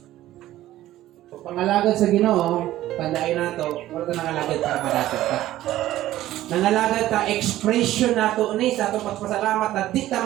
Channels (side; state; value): left; quieter; 14.5 dB